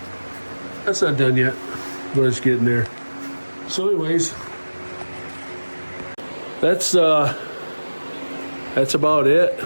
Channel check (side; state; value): both; inverted; correlation -1.00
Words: That's not done yet, but it's getting there. So anyways, that's about it